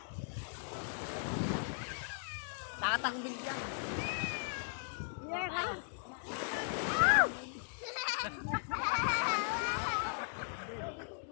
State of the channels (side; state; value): right; silent; digital silence